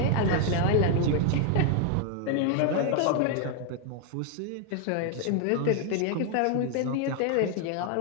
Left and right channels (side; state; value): both; different; correlation 0.00